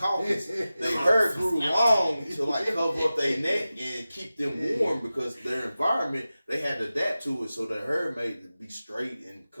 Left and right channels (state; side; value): inverted; both; correlation -0.95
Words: Their hair grew long to like cover up their neck and keep them warm because their environment they had to adapt to it. So their hair made it be straight and